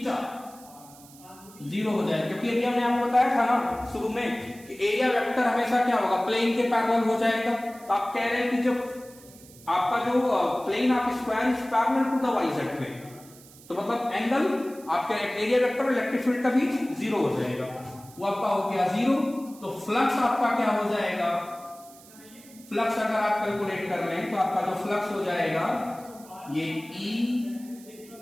0 हो जाएगा, क्योंकि एरिया में आपको बताया था ना शुरू में कि एरिया वेक्टर हमेशा क्या होगा प्लेन के पैरेलल हो जाएगा। तो आप कह रहे हैं कि जब आपका जो प्लेन आप square is parallel to the Y Z plane, तो मतलब एंगल आपका एरिया वेक्टर और इलेक्ट्रिक फील्ड का बीच 0 हो जाएगा, वो आपका हो गया 0। तो फ्लक्स आपका क्या हो जाएगा, फ्लक्स अगर आप कैलकुलेट कर लें तो आपका जो फ्लक्स हो जाएगा ये E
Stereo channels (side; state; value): right; noise; hiss, 22 dB below the sound